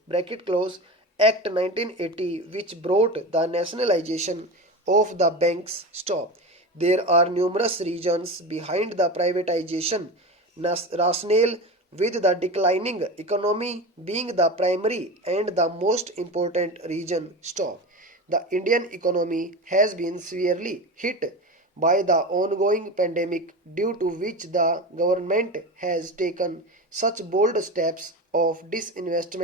close Act 1980, which brought the nationalization of the banks. Stop. There are numerous reasons behind the privatization rationale, with the declining economy being the primary and the most important reason. Stop. The Indian economy has been severely hit by the ongoing pandemic, due to which the government has taken such bold steps of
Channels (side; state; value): both; normal; correlation 0.26